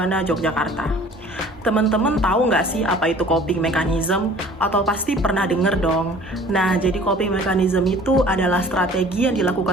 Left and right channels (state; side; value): normal; both; correlation 0.49